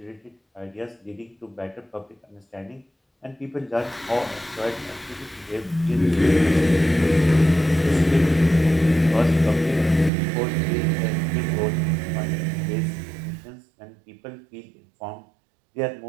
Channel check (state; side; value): drops out; left; at 10.1 s